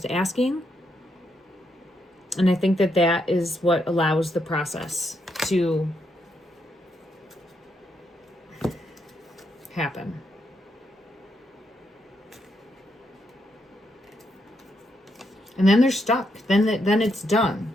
asking. And I think that that is what allows the process to happen. And then they're stuck. Then it's done.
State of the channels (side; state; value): both; normal; correlation 0.79